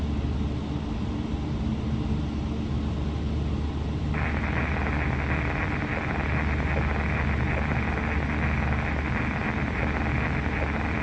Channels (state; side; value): identical; both; correlation 1.00